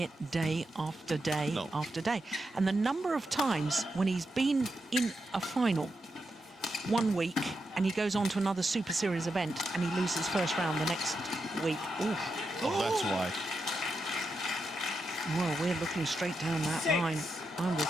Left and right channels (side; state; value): both; normal; correlation 0.86